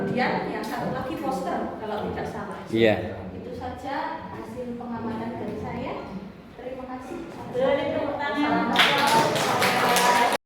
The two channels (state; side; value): identical; both; correlation 1.00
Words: yang satu lagi poster kalau tidak salah. Iya. Itu saja hasil pengamatan dari saya. Terima kasih. Boleh tepuk tangan.